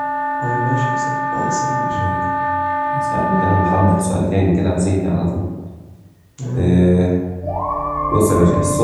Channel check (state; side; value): identical; both; correlation 1.00